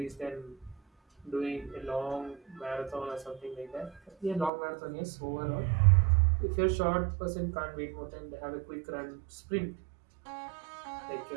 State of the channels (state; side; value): drops out; left; at 4.5 s